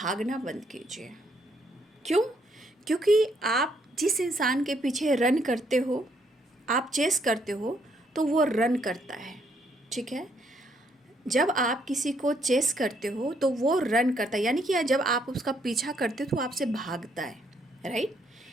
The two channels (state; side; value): normal; both; correlation 0.71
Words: बंद कीजिए। क्यों? क्योंकि आप जिस इंसान के पीछे रन करते हो, आप चेस करते हो, तो वो रन करता है, ठीक है। जब आप किसी को चेस करते हो तो वो रन करता है, यानी कि जब आप उसका पीछा करते हो तो आपसे भागता है, राइट।